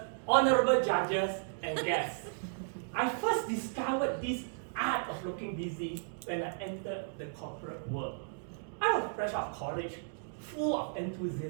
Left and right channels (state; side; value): silent; left; digital silence